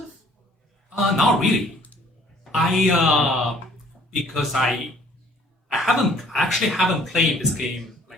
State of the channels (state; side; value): normal; both; correlation 0.58